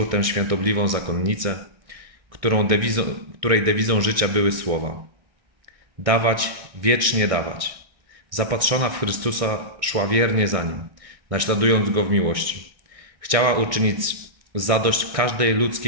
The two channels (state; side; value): late; left; 1.6 ms